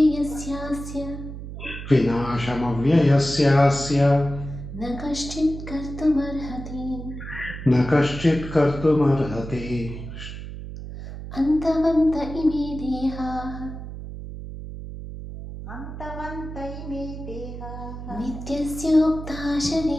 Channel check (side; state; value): right; noise; hum, 10 dB below the sound